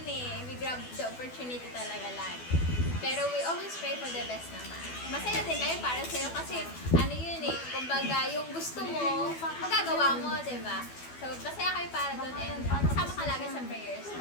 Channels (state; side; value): late; right; 12 ms